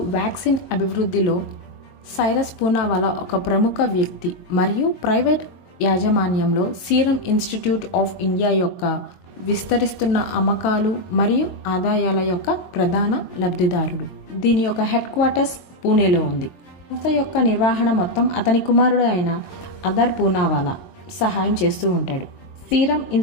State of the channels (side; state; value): right; late; 22 ms